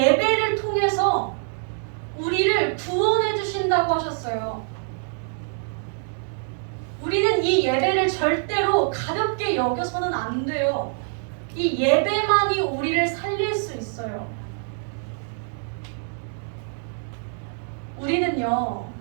통해서 우리를 구원해 주신다고 하셨어요. 우리는 이 예배를 절대로 가볍게 여겨서는 안 돼요. 이 예배만이 우리를 살릴 수 있어요. 우리는요,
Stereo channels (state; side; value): silent; left; 62 dB below the other